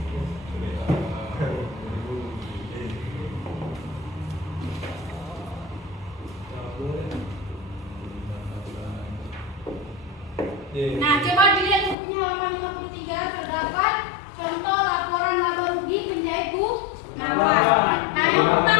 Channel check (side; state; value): right; drops out; at 12.0 s